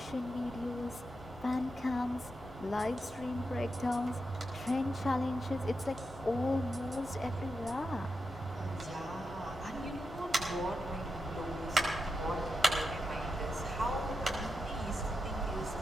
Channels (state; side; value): normal; both; correlation 0.87